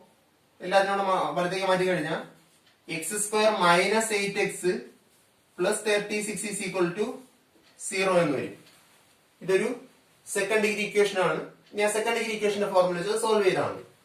എല്ലാത്തിനോടും വലത്തേക്ക് മാറ്റി കഴിഞ്ഞാൽ X square minus 8x plus 36 is equal to 0 എന്ന് വരും. ഇതൊരു സെക്കൻഡ് ഡിഗ്രി ഇക്വേഷൻ ആണ്. ഞാൻ സെക്കൻഡ് ഡിഗ്രി ഇക്വേഷന്റെ ഫോർമുല വെച്ചത് സോൾവ് ചെയ്താൽ മതി.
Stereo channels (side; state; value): both; identical; correlation 1.00